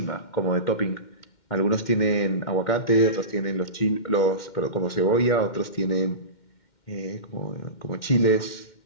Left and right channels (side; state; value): right; late; 2.1 ms